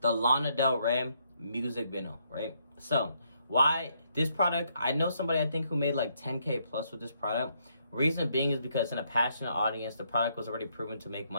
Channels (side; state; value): both; inverted; correlation -0.73